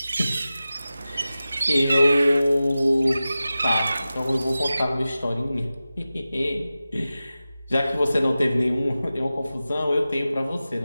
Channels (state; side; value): inverted; both; correlation -0.95